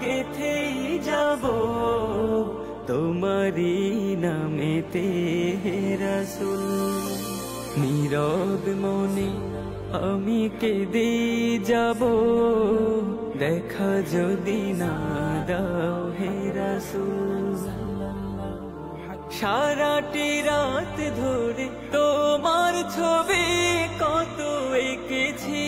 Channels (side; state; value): both; identical; correlation 1.00